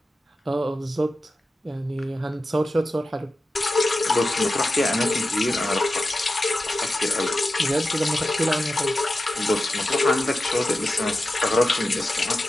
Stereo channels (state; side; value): normal; both; correlation 0.92